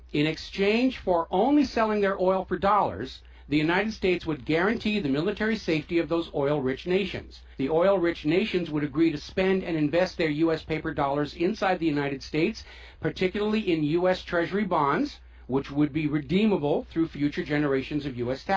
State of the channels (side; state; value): both; identical; correlation 1.00